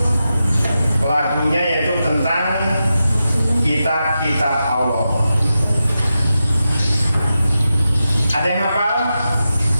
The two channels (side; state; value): both; inverted; correlation -0.90